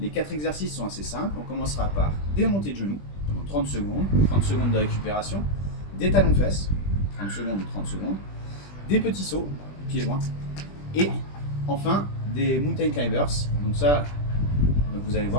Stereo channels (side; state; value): right; late; 20 ms